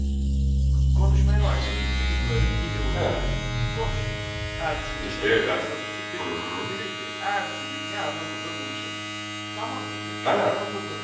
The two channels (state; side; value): identical; both; correlation 1.00